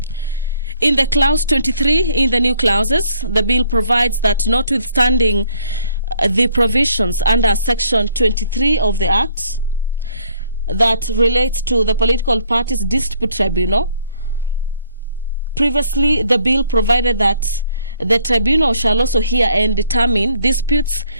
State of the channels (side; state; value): both; inverted; correlation -0.64